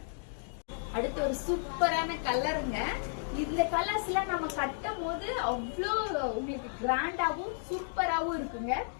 அடுத்து ஒரு சூப்பரான கலருங்க. இந்த கலர்ஸ் எல்லாம் நம்ம கட்டும் போது அவ்வளோ உங்களுக்கு கிராண்டாவும் சூப்பராவும் இருக்குங்க.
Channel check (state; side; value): silent; right; digital silence